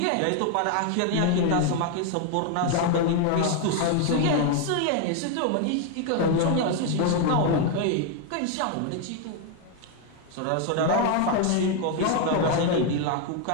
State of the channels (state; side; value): different; both; correlation 0.01